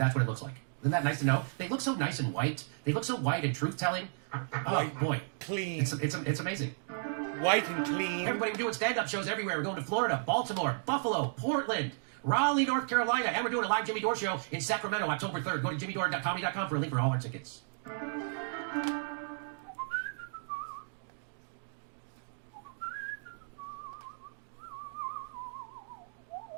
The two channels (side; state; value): left; silent; digital silence